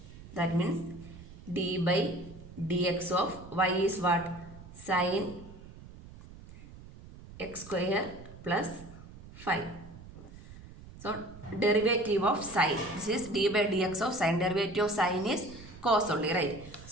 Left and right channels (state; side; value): noise; right; rumble, 17 dB below the sound